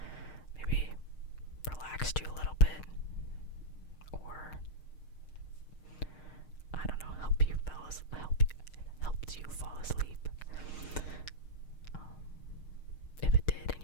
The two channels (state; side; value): late; right; 6.5 ms